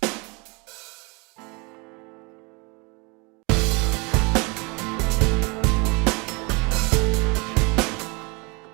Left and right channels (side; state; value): left; quieter; 29.5 dB